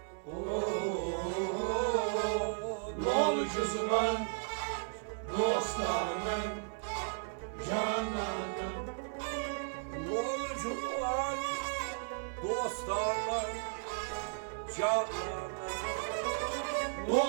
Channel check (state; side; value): silent; left; digital silence